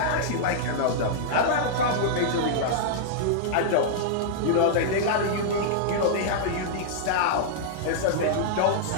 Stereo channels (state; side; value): different; both; correlation -0.02